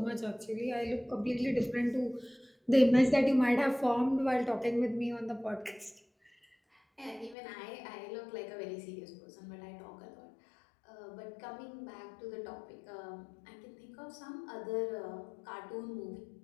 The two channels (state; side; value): drops out; right; at 7.4 s